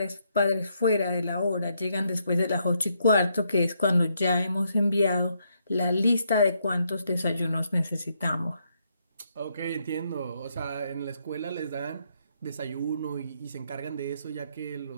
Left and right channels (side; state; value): both; inverted; correlation -0.76